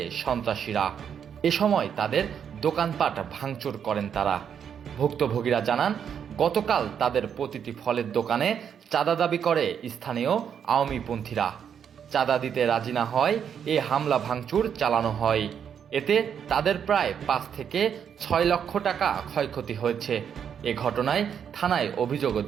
সন্ত্রাসীরা। এ সময় তাদের দোকানপাট ভাঙচুর করেন তারা। ভুক্তভোগীরা জানান, গতকাল তাদের প্রতিটি ফলের দোকানে চাঁদা দাবি করে স্থানীয় আওয়ামীপন্থীরা। চাঁদা দিতে রাজি না হয় এ হামলা ভাঙচুর চালানো হয়। এতে তাদের প্রায় 5 থেকে 6 লক্ষ টাকা ক্ষয়ক্ষতি হয়েছে। এ ঘটনায় থানায় অভিযোগও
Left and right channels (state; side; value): quieter; left; 8.0 dB